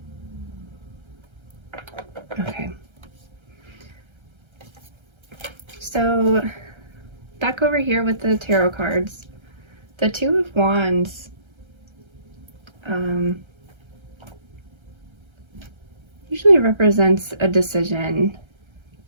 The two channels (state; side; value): late; left; 1.3 ms